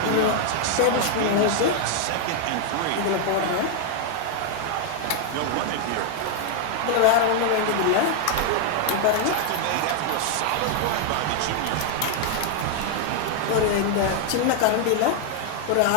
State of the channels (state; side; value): different; both; correlation 0.00